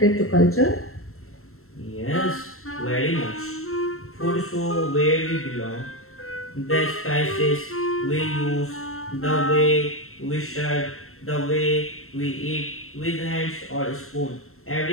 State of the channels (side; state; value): right; late; 0.62 ms